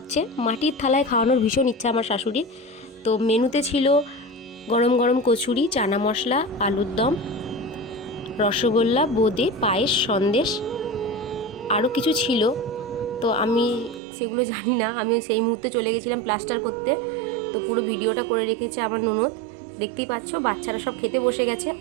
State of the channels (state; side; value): drops out; left; at 14.0 s